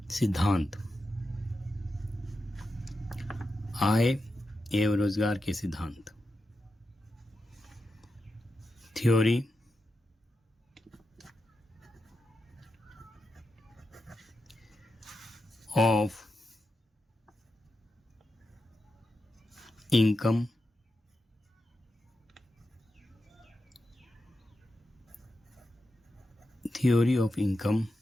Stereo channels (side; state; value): both; normal; correlation 0.88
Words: आय एवं रोजगार के सिद्धांत, theory of income